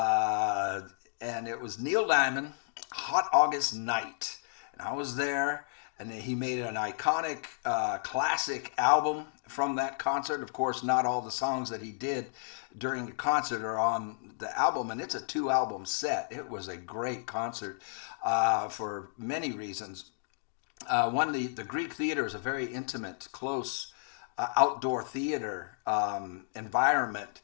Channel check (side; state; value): right; silent; digital silence